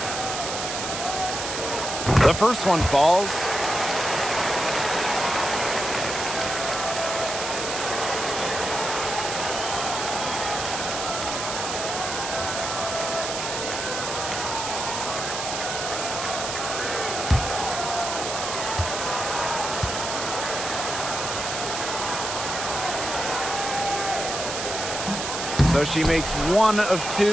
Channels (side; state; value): right; noise; hiss, 4 dB below the sound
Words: The first one falls. So she makes 1 of 2